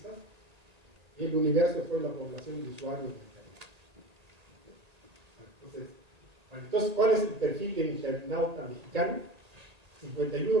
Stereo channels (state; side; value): late; left; 1.8 ms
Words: y el universo fue la población de usuarios del país. Entonces, ¿cuál es el perfil del internauta mexicano?